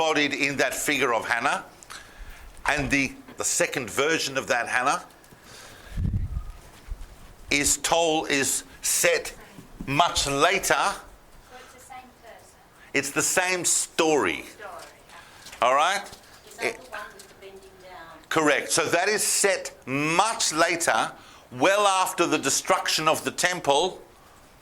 in that figure of Hannah, and the second version of that Hannah is set much later. So it's the same person? It's the same story. All right? Is that the one with the bending down? Correct. So that is set much later, well after the destruction of the temple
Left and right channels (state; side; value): identical; both; correlation 1.00